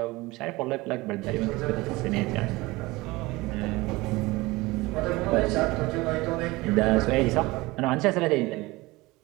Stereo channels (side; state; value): left; quieter; 21.4 dB